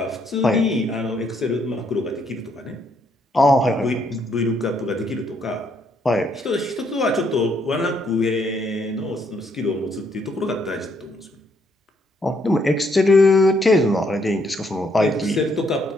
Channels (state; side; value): normal; both; correlation 0.72